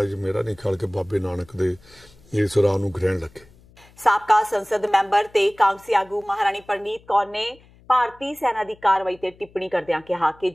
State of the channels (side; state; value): left; noise; hum, 27 dB below the sound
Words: ਮੇਰਾ ਨਹੀਂ ਖਿਆਲ ਕਿ ਬਾਬੇ ਨਾਨਕ ਦੇ ਇਸ ਰਾਹ ਨੂੰ ਗ੍ਰਹਿਣ ਲੱਗੇ। ਸਾਬਕਾ ਸੰਸਦ ਮੈਂਬਰ ਤੇ ਕਾਂਗਰਸੀ ਆਗੂ ਮਹਾਰਾਣੀ ਪ੍ਰਨੀਤ ਕੌਰ ਨੇ ਭਾਰਤੀ ਸੈਨਾ ਦੀ ਕਾਰਵਾਈ ਤੇ ਟਿੱਪਣੀ ਕਰਦਿਆਂ ਕਿਹਾ ਕਿ